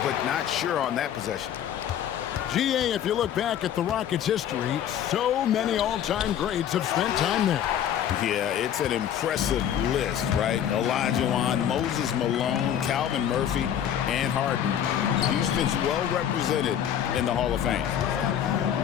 but not sure on that possession. GA, if you look back at the Rockets' history, so many all-time greats have spent time there. Yeah, it's an impressive list, right? Olajuwon, Moses Malone, Calvin Murphy, and Harden. Houston's well represented in the Hall of Fame.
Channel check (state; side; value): quieter; right; 9.8 dB